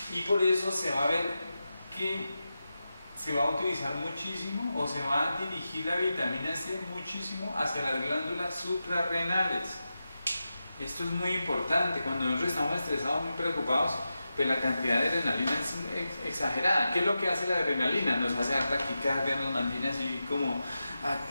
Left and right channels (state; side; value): inverted; both; correlation -0.91